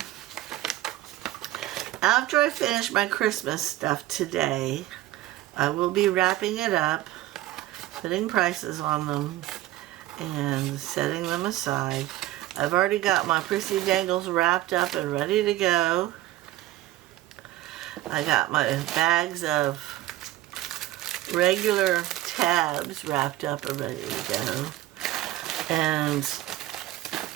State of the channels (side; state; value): left; quieter; 15.6 dB